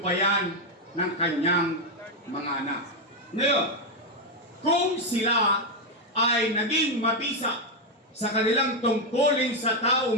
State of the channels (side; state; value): both; normal; correlation 0.04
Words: ng kanyang mga anak. Ngayon, kung sila ay naging mabisa sa kanilang tungkulin sa